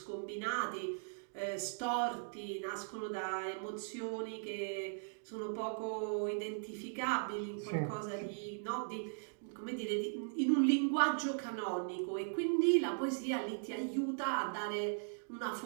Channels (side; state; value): left; silent; digital silence